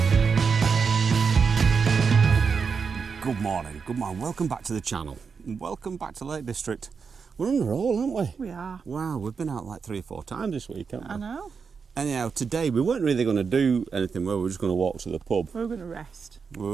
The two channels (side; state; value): left; quieter; 5.6 dB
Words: Good morning, welcome back to the channel. Welcome back to Lake District. We're on a roll, aren't we? We are. Wow, we've been out like 3 or 4 times this week, haven't we? I know. Anyhow, today we weren't really going to do anything, we were just going to walk to the pub. We were going to rest. We